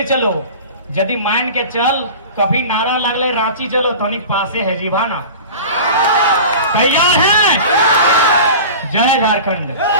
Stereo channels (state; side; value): inverted; both; correlation -0.35